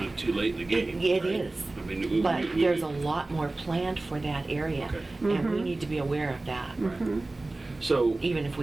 of too late in the game. It right? is. I mean, But there's a lot more planned for that area, Okay. and we need to be aware of that, So, even if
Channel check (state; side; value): quieter; left; 3.0 dB